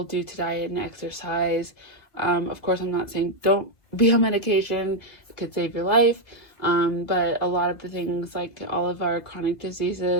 due to diet and exercise. Of course, I'm not saying don't be on medication. It could save your life. But a lot of the things, like all of our chronic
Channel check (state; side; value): late; right; 2.2 ms